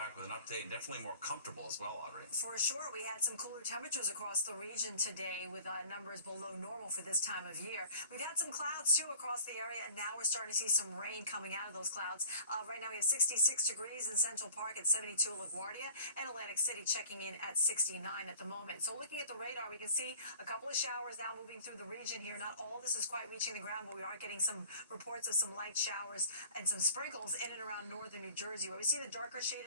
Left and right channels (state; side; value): inverted; both; correlation -0.49